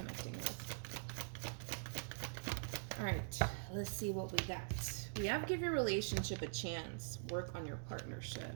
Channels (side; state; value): left; silent; digital silence